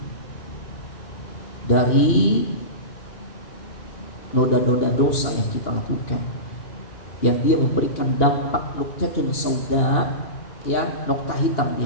dari noda-noda dosa yang kita lakukan, yang dia memberikan dampak nuqtatun sauda, ya, nokta hitam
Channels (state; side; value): late; right; 2.8 ms